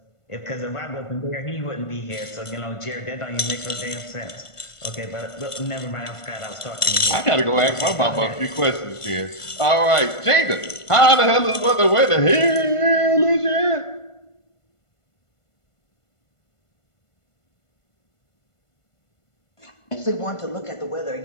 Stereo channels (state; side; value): late; right; 1.5 ms